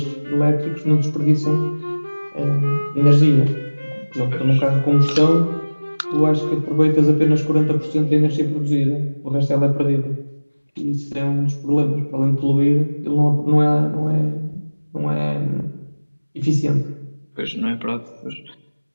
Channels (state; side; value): inverted; both; correlation -1.00